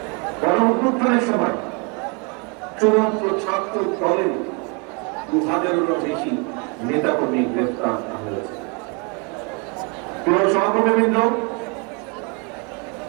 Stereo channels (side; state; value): left; quieter; 33.1 dB